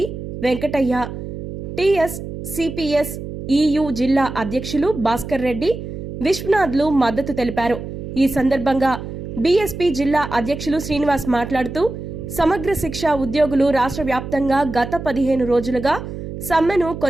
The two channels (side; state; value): right; noise; hum, 8 dB below the sound